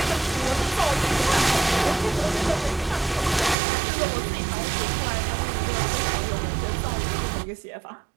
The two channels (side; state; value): left; drops out; at 3.6 s